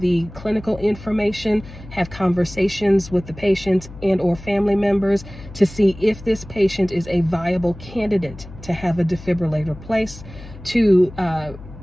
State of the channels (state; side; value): noise; left; hum, 16 dB below the sound